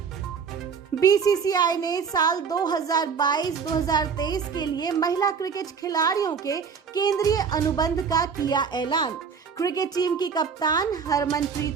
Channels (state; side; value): quieter; left; 6.2 dB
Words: बीसीसीआई ने साल 2022-2023 के लिए महिला क्रिकेट खिलाड़ियों के केंद्रीय अनुबंध का किया ऐलान। क्रिकेट टीम की कप्तान